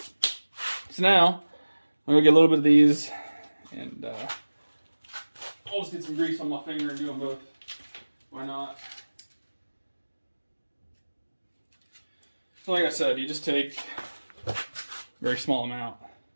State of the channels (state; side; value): inverted; both; correlation -1.00